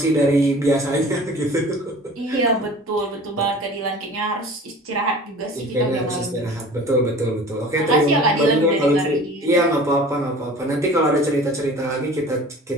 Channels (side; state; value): both; normal; correlation 0.43